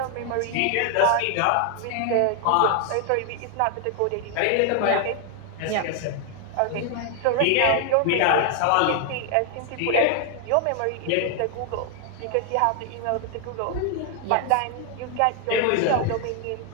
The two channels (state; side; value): different; both; correlation 0.00